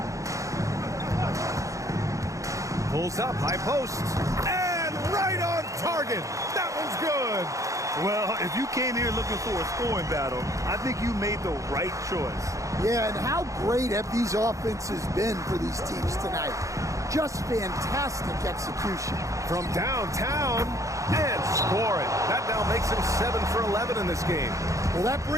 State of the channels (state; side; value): late; left; 0.15 ms